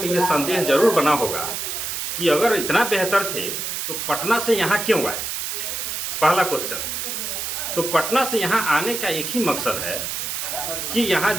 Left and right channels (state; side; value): noise; right; hiss, 3 dB below the sound